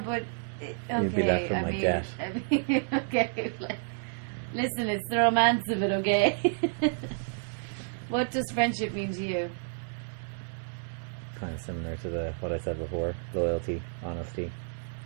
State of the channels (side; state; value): left; silent; digital silence